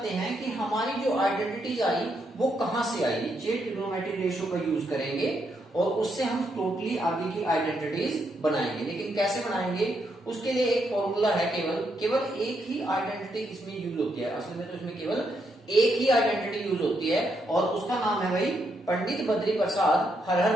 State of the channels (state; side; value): normal; both; correlation 0.78